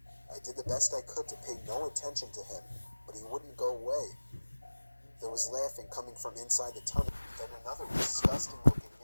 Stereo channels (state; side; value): inverted; both; correlation -1.00